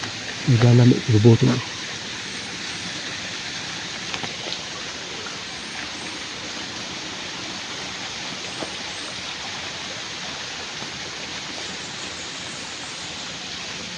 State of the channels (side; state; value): both; identical; correlation 1.00